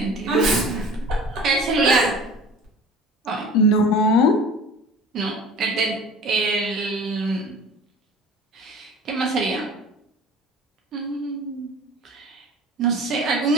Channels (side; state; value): both; normal; correlation 0.42